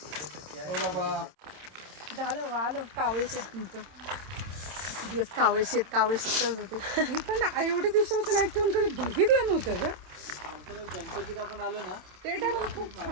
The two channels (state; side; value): late; left; 27 ms